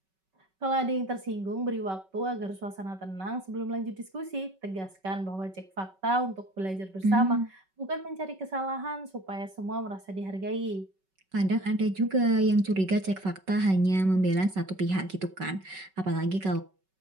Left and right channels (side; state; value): left; late; 5.3 ms